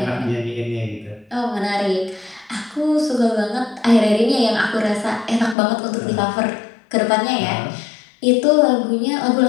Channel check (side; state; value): right; drops out; at 5.6 s